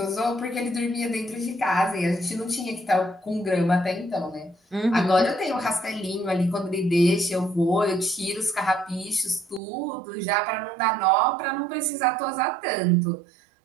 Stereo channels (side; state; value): left; drops out; at 9.6 s